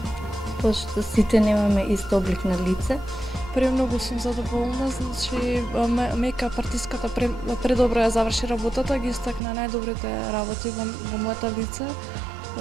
пошто сите немаме ист облик на лице. Премногу сум задоволна, значи мејкап артистката предобро ја заврши работата, ги истакна најдобрите работи во моето лице,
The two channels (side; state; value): left; drops out; at 9.4 s